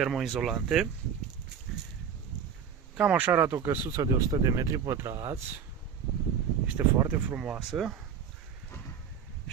Cam așa arată o căsuță de 100 de metri pătrați. Este foarte frumoasă.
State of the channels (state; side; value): quieter; left; 7.5 dB